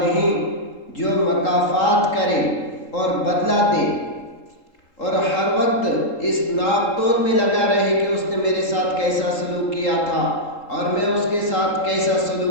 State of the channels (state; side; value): late; right; 3.8 ms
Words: جو مکافات کرے اور بدلہ دے اور ہر وقت اس ناپ تول میں لگا رہے کہ اس نے میرے ساتھ کیسا سلوک کیا تھا اور میں اس کے ساتھ کیسا